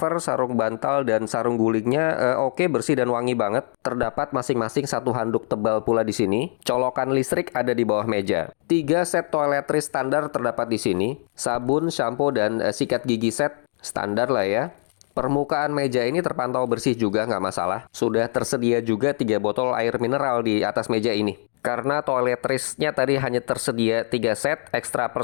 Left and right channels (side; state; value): right; silent; 59 dB below the other